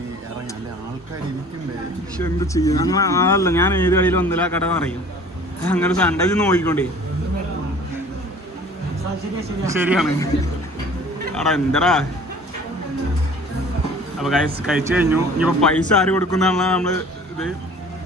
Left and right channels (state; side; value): normal; both; correlation 0.48